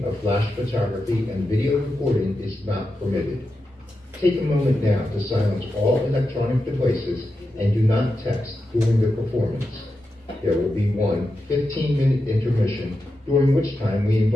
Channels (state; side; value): normal; both; correlation 0.89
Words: of flash photography and video recording is not permitted. Take a moment now to silence all electronic devices and do not text during the performance. There will be one 15-minute intermission, during which time we